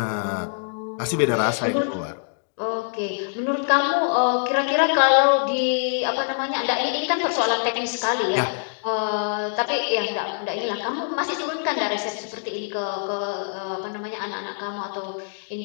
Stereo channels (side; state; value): right; silent; digital silence